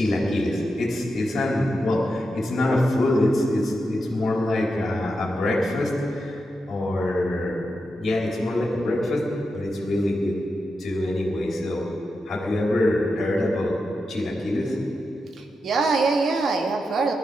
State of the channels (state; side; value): normal; both; correlation 0.88